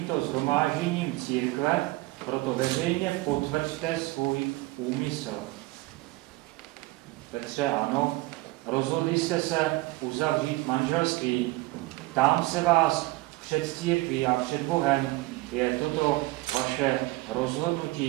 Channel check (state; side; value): quieter; left; 20.5 dB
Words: shromážděním církve proto veřejně potvrďte svůj úmysl. Petře, ano, rozhodli jste se uzavřít manželství. Ptám se vás před církví a před Bohem, je toto vaše